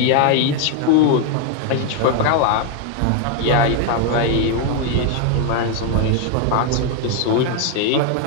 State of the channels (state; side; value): different; both; correlation 0.01